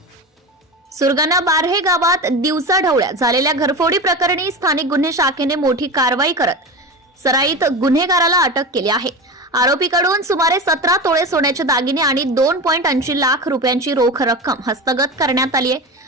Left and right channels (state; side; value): normal; both; correlation 0.25